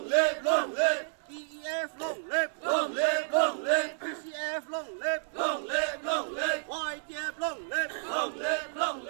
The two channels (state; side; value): silent; left; 57 dB below the other